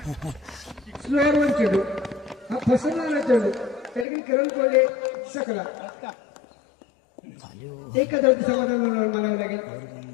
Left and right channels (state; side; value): drops out; right; at 4.0 s